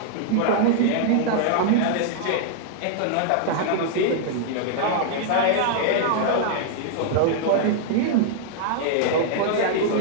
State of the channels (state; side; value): different; both; correlation -0.01